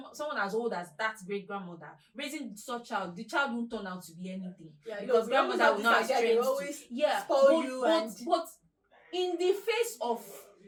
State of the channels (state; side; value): identical; both; correlation 1.00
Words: as old as that great grandmother raising such child, the child won't turn out to be anything, because grandmother will not have strength to, spoil you but in the face of